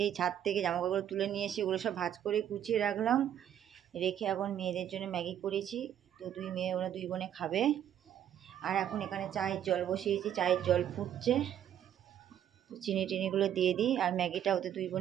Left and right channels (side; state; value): left; quieter; 10.3 dB